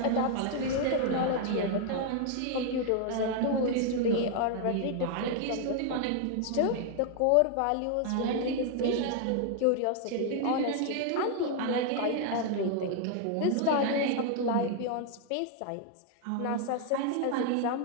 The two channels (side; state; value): both; different; correlation 0.00